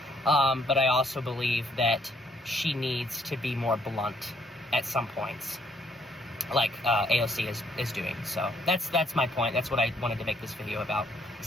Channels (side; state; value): both; normal; correlation 0.68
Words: But I also believe that she needs to be more blunt at some points, like AOC is doing. So that's my point. That's what I wanted to make this video about.